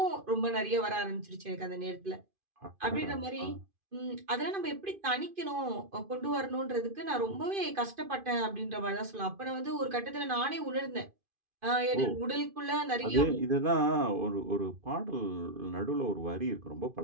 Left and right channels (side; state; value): left; late; 2.5 ms